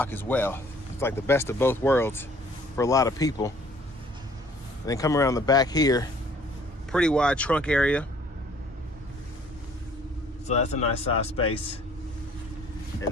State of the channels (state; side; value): normal; both; correlation 0.57